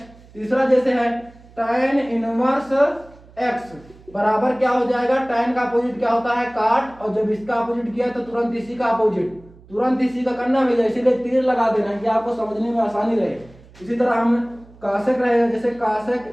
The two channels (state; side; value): noise; right; hum, 24 dB below the sound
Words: तीसरा, जैसे है tan इनवर्स x बराबर क्या हो जाएगा, tan का अपोजिट क्या होता है, काट, और जब इसका अपोजिट किया तो तुरंत इसी का अपोजिट, तुरंत इसी का करना भैया, इसीलिए तीर लगा देना है कि आपको समझने में आसानी रहे। इसी तरह हम कासेक रहेगा, जैसे